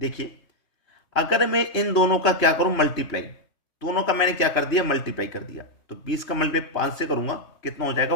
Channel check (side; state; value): right; late; 3.0 ms